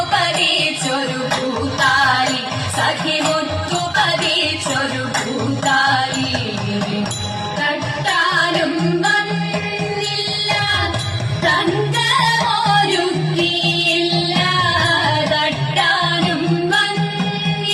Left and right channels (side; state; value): both; identical; correlation 1.00